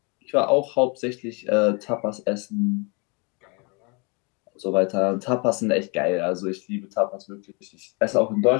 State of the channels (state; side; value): quieter; right; 31.6 dB